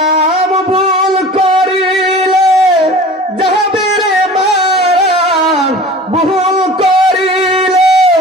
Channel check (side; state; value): both; normal; correlation 0.41